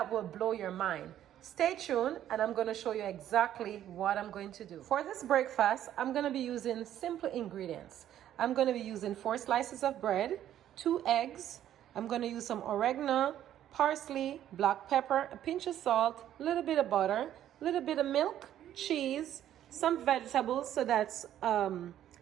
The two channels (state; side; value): quieter; left; 11.4 dB